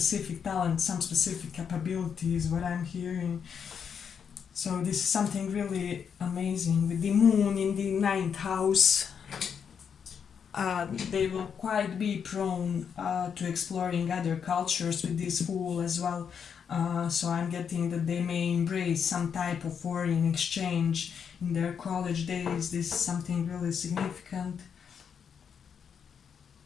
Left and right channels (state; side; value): quieter; right; 7.2 dB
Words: talent, some specific capabilities, what I'm hearing. So this is something really amazing. With the moon in the ninth house, they will quite be prone to exploring other cultures with this fool as well. So I'm getting that they may embrace some type of foreign exchange in their college days. This is something really significant.